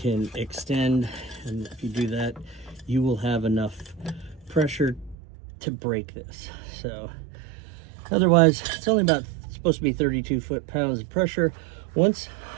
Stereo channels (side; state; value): left; drops out; at 5.2 s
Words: extend, and if you do that, you will have enough pressure to break this. So otherwise, it's only about supposed to be 32 foot-pounds of pressure. Once